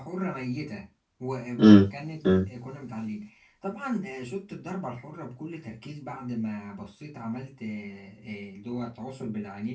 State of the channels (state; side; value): identical; both; correlation 1.00